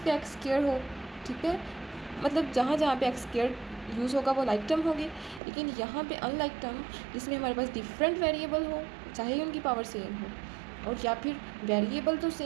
एक्स स्क्वायर हो। ठीक है, मतलब जहाँ जहाँ पे एक्स स्क्वायर यूज़ होगा वो लाइक टर्म होगी। लेकिन यहाँ पे अनलाइक टर्म जिसमें हमारे पास डिफरेंट वेरिएबल हो, चाहे उनकी पावर सेम हो, और या फिर वेरिएबल तो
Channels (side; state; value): left; drops out; at 5.4 s